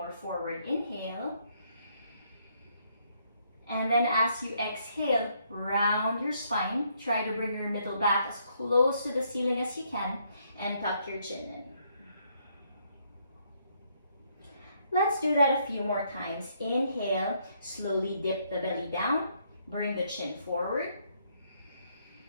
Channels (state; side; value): inverted; both; correlation -0.71